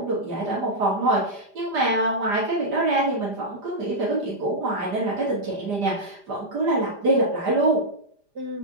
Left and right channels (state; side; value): late; left; 5.0 ms